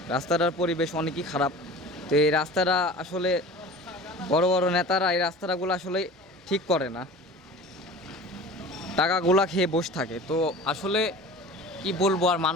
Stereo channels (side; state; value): both; normal; correlation 0.39